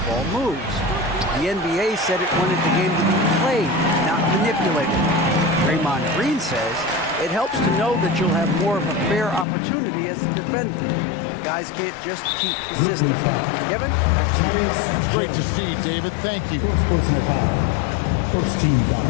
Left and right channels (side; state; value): right; drops out; at 9.5 s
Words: moves. The NBA said it wanted the game to be played, not manipulated. Draymond Green says it helps to know that you'll have more of a fair opportunity as a defender. Guys can't just cheat the system. Kevin, back to you. That's great to see, David. Thank you. Personal foul. First team